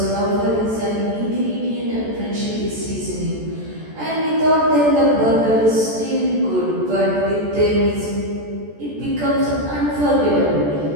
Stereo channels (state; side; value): late; left; 14 ms